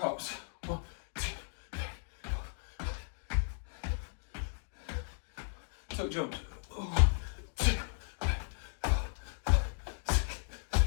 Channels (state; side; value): silent; right; digital silence